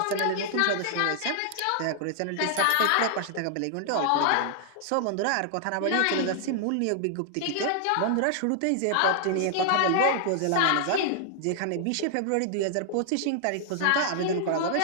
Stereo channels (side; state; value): both; different; correlation -0.01